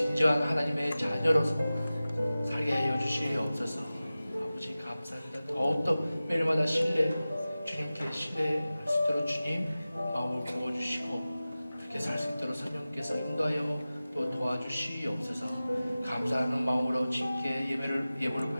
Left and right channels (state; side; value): inverted; both; correlation -0.96